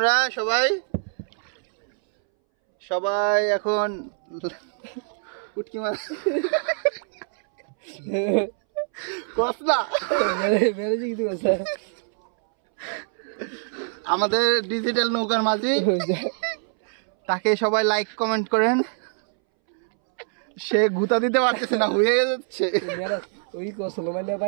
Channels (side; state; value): left; silent; 62 dB below the other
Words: সবাই। সবাই এখন উটকি মাছ কসলা আমাদের ডিজিটাল নৌকার মাঝি, তাকে সবাই লাইক কমেন্ট করেন। সে গুতা দিতে পারতেছে না, হয়ে যাচ্ছে। ওই কসল মানে